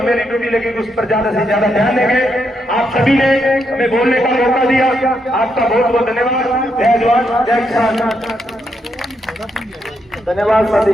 ड्यूटी लगेगी उस पर ज्यादा से ज्यादा ध्यान देंगे। आप सभी ने हमें बोलने का मौका दिया, आपका बहुत बहुत धन्यवाद। जय जवान जय किसान। धन्यवाद साथी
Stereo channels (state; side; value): normal; both; correlation 0.79